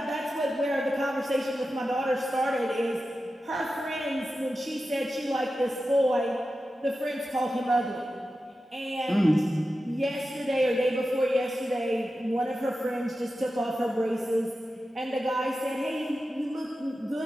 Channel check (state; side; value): normal; both; correlation 0.92